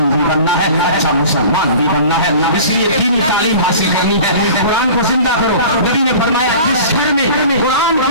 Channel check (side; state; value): both; inverted; correlation -0.41